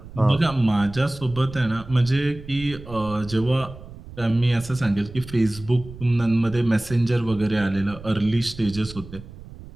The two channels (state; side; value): noise; right; rumble, 15 dB below the sound